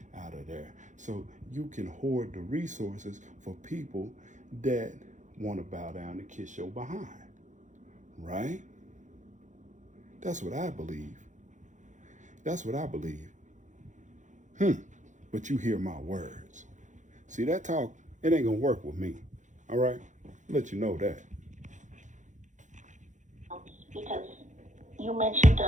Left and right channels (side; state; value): left; late; 0.36 ms